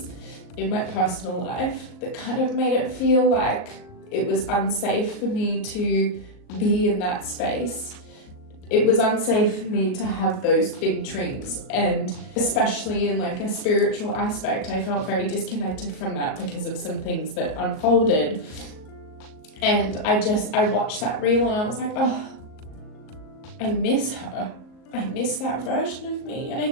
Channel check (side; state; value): right; late; 38 ms